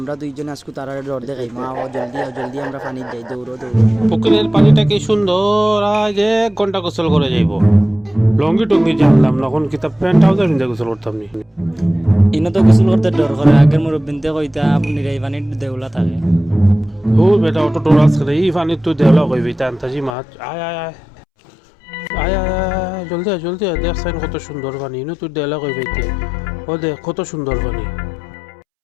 দুইজনে আজকে তারা ডর দেখাই মা ও জলদি আমরা পানি যাই দৌড়ো পুকুরের পানিটা কি সুন্দর, আজ 1 ঘন্টা গোসল করে যাইব। লঙ্গি টঙ্গি জানলাম না, এখন কিতাব প্যান্ট ট্রাউজার নিয়ে গোসল করতাম নি। ইনো তো গোসল করতে ডর করে আগের মুরব্বিনতে কইতা আপনি এই পানির দেউলা থাকে ও বেটা অটো টোরাস করে এই পানি তুই দেওয়া কইবি তান্তাজি মাছ আয় আয় আয় আয় আয় জলদি আয় দেখ সাইন কত সুন্দর পানি, ইনো তুই দেওয়া কইবি ও দেখ কত সুন্দর পানি।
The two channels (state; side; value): drops out; right; at 20.1 s